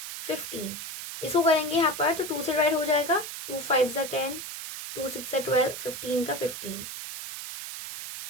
15 इसको करेंगे यहाँ पर तो 2 से डिवाइड हो जाएगा। 2 5 जा 10, 2 6 जा 12, 15 का 15,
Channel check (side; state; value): right; noise; hiss, 8 dB below the sound